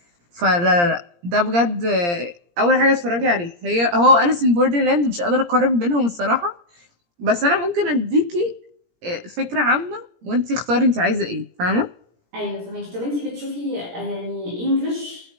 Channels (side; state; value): left; late; 17 ms